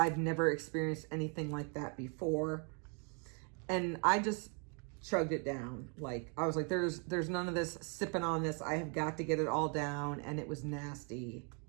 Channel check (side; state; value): left; quieter; 38.0 dB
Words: never experienced anything like that before. And I just chugged it down. Like I was like, there's none of this sipping on this. I have got to get it all down. And it was nasty.